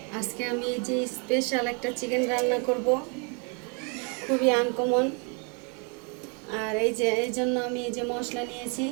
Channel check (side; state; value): left; quieter; 35.8 dB